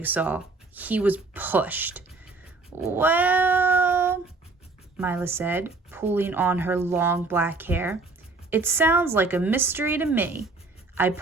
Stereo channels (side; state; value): left; quieter; 3.6 dB